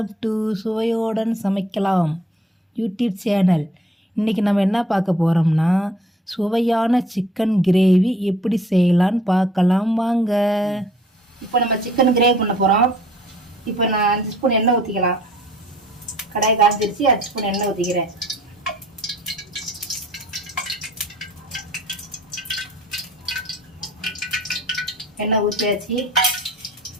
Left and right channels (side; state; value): both; normal; correlation 0.57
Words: டு சுவையோடன் சமைக்கலாம் யூடியூப் சேனல். இன்றைக்கி நம்ம என்ன பார்க்க போகிறோம்னா, சுவையான சிக்கன் கிரேவி எப்படி செய்யலான்னு பார்க்கலாம் வாங்க. இப்போ நம்ம சிக்கன் கிரேவி பண்ண போகிறோம். இப்போ நான் 5 ஸ்பூன் எண்ணெய் ஊற்றிக்கலாம். கடாய் காய்ச்சிருச்சு, 5 ஸ்பூன் எண்ணெய் ஊற்றிக்கிறேன். எண்ணெய் ஊற்றியாச்சு,